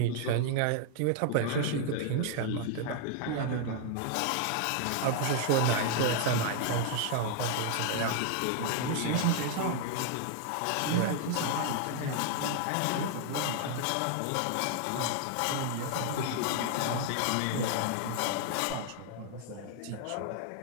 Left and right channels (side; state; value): both; different; correlation 0.00